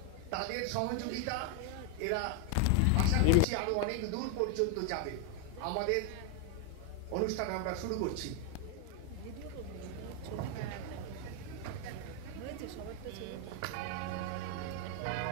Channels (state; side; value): different; both; correlation 0.01